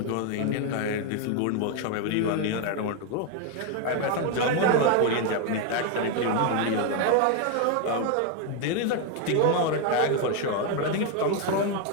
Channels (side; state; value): both; different; correlation 0.01